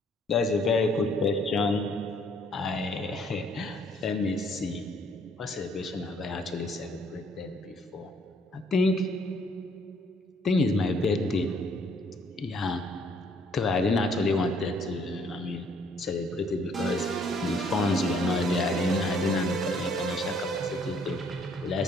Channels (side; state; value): both; normal; correlation 0.63